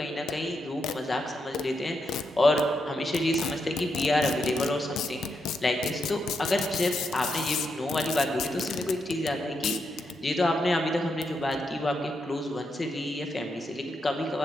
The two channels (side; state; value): both; normal; correlation 0.82